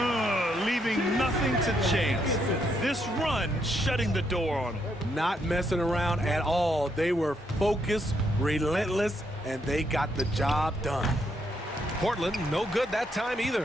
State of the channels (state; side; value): normal; both; correlation 0.76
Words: Leaving nothing to chance. This run shutting the door on him. Not messing around at all. They were focused, relentless, and they got the job done. Portland, no good that time